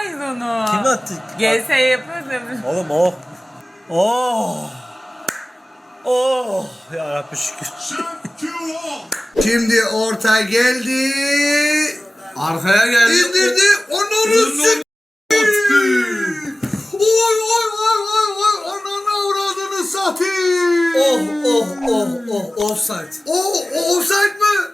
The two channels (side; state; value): both; normal; correlation 0.97